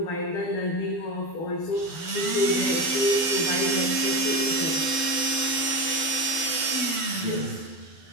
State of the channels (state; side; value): late; right; 12 ms